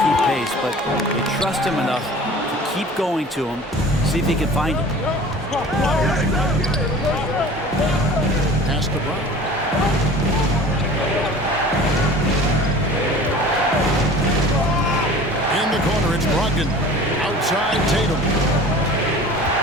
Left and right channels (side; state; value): both; normal; correlation 0.43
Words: keep pace, but they trust him enough to keep going to him, see if he can find it. Pass to Brown. In the corner, it's Brogdon. Outside Tatum.